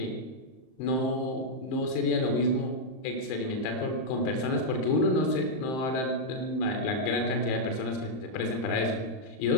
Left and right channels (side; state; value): right; late; 38 ms